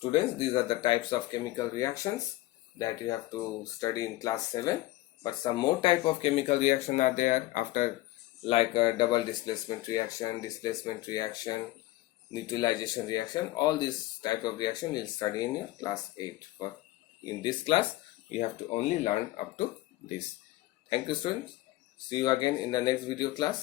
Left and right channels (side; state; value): right; quieter; 17.5 dB